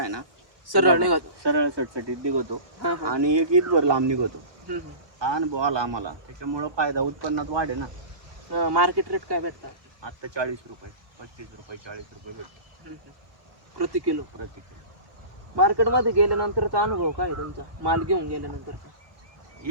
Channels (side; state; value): left; late; 1.4 ms